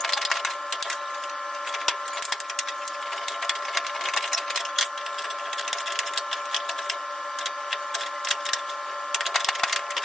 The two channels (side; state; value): both; normal; correlation 0.85